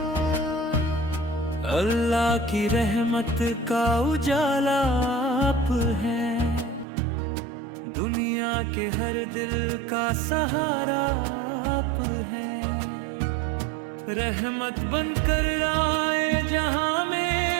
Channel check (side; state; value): left; drops out; at 6.9 s